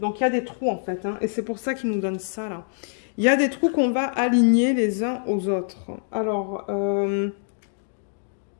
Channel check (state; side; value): silent; right; digital silence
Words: Donc, il y a des trous, en fait. Hein, et c'est pour ça qu'ils nous donnent ça, là. Il y a des trous qu'on va aligner les uns aux autres. Alors,